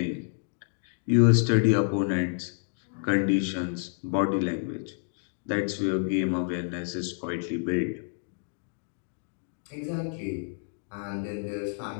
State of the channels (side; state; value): right; silent; digital silence